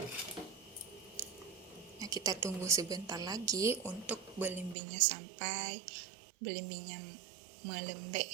Nah, kita tunggu sebentar lagi untuk belimbingnya sampai belimbingnya melembek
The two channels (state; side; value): drops out; left; at 4.8 s